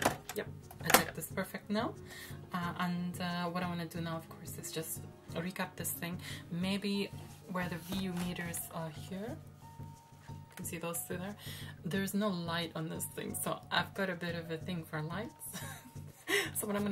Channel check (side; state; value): both; identical; correlation 1.00